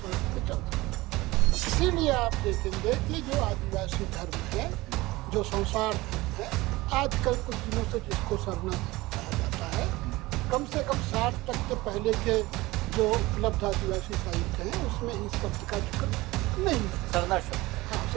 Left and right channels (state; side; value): quieter; left; 20.2 dB